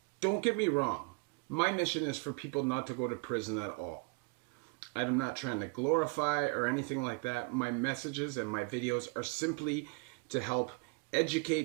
don't get me wrong. My mission is for people not to go to prison at all. I'm not trying to glorify or anything like that. My messages and my videos are simply to help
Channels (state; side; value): quieter; left; 31.7 dB